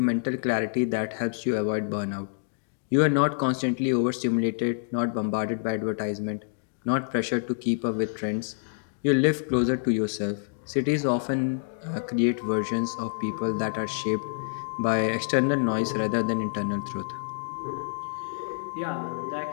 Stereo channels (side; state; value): right; silent; digital silence